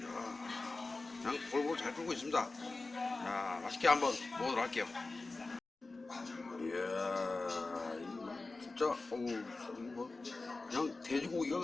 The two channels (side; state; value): right; quieter; 3.5 dB